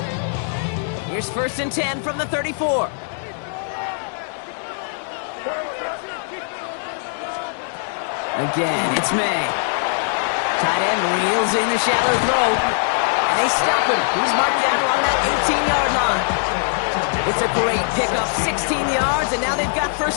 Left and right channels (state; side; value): silent; right; 65 dB below the other